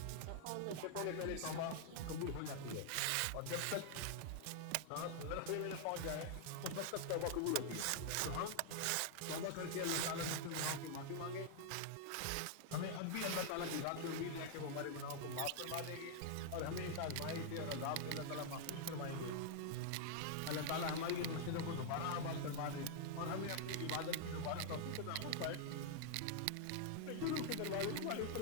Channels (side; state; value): both; different; correlation -0.01